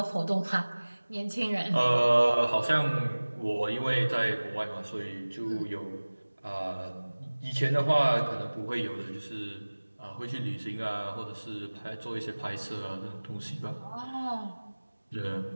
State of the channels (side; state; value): both; inverted; correlation -1.00